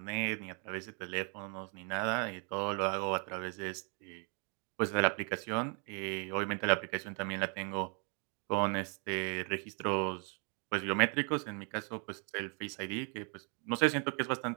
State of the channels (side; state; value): left; quieter; 37.3 dB